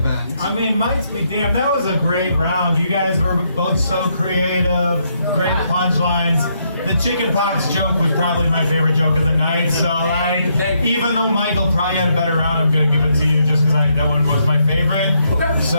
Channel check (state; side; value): inverted; both; correlation -0.76